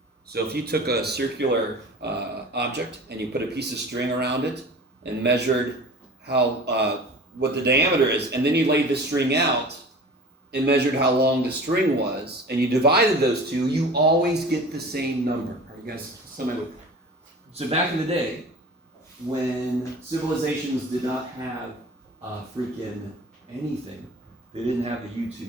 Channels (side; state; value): both; normal; correlation 0.39